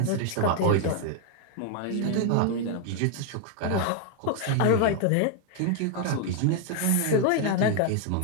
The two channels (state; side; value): different; both; correlation 0.00